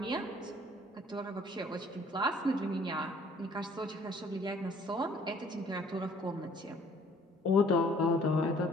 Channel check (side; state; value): both; normal; correlation 0.58